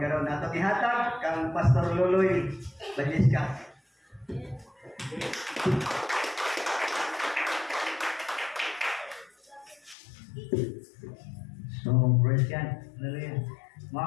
Ato gihatag kang Pastor Luloy Bagisca. So, praise God. Hallelujah.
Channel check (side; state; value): right; drops out; at 10.0 s